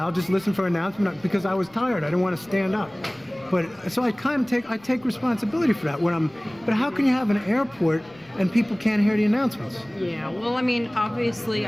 just listen for an announcement because I was tired. I didn't want to stand up. But so I take responsibility for that when I'm. But how can you have an airport and people can't hear the announcements? Yeah, well, I mean, obviously,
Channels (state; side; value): noise; left; rumble, 28 dB below the sound